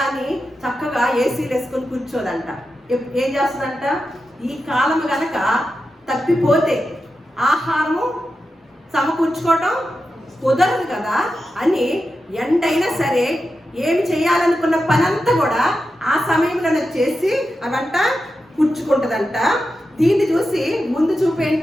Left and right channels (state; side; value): normal; both; correlation 0.90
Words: అని చక్కగా ఏసీలు వేసుకొని కూర్చోదంట. ఏం చేస్తుందంట, ఈ కాలం గనక తప్పిపోతే ఆహారము సమకూర్చుకోవటం కుదరదు కదా అని ఎండైనా సరే ఏమి చేయాలనుకున్న పనంతా కూడా ఆ సమయంలో చేసి అవంట కూర్చుకుంటుందంట. దీన్ని చూసి ముందు చూపు